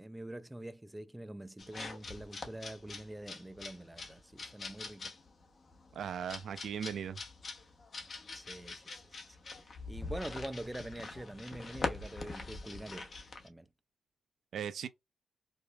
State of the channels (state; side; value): normal; both; correlation 0.83